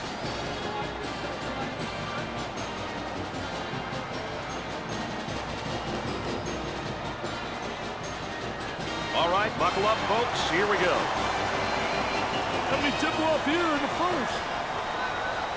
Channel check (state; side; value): identical; both; correlation 1.00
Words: All right, buckle up, folks. Here we go. Let me tip off here in the first.